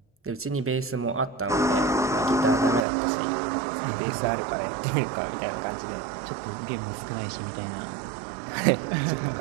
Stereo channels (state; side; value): drops out; left; at 2.9 s